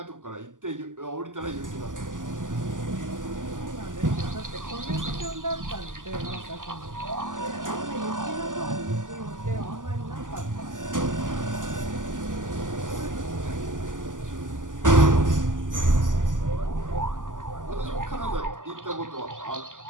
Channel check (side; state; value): left; late; 0.88 ms